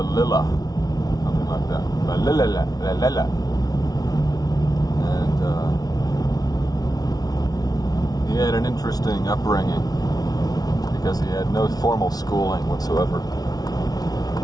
something like that. Valilla. And he had an interesting upbringing because he had no formal schooling whatsoever.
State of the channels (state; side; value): late; right; 0.19 ms